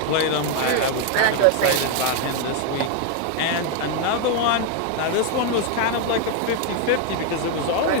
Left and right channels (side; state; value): both; different; correlation 0.01